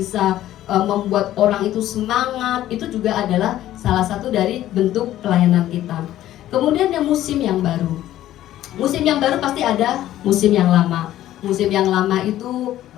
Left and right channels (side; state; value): right; quieter; 13.4 dB